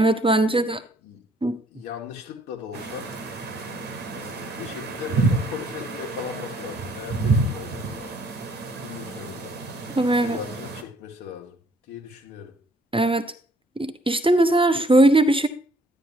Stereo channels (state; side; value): normal; both; correlation 0.63